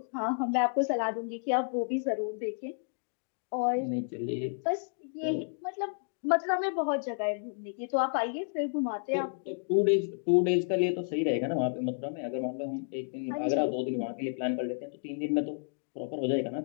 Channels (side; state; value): right; silent; digital silence